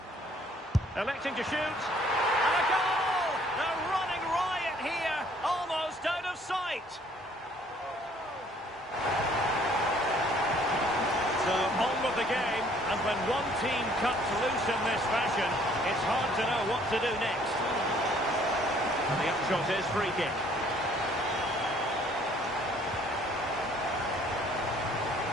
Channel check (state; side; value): normal; both; correlation 0.60